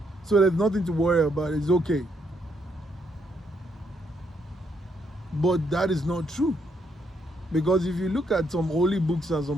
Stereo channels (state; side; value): normal; both; correlation 0.74